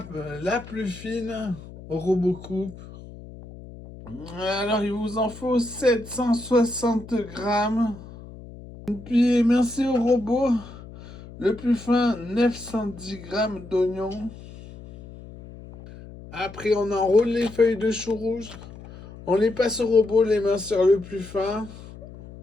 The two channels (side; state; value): left; noise; hum, 16 dB below the sound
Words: la plus fine au robot coupe. Alors, il vous en faut 760 grammes. Puis, merci au robot. Le plus fin, 910 grammes d'oignons. Après, on enroule les feuilles de chou rouge. On les passe au robot, les mains sur le plus fin.